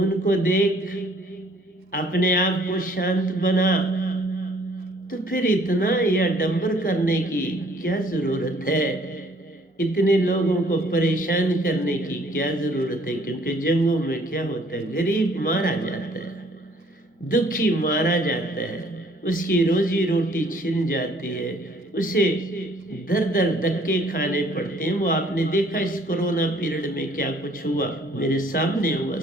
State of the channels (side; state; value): both; normal; correlation 0.60